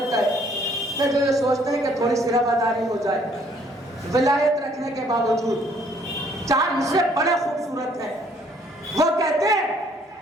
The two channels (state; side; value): normal; both; correlation 0.63